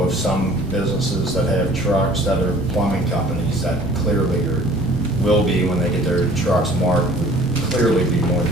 some businesses that have trucks that are plumbing companies that clearly will be, when they get their trucks marked, would clearly be more than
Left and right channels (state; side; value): normal; both; correlation 0.51